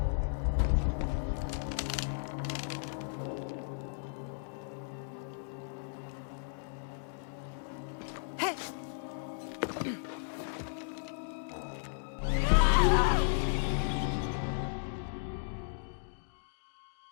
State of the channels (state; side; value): silent; right; digital silence